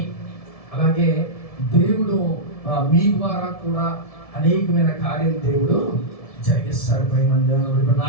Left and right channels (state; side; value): late; right; 1.7 ms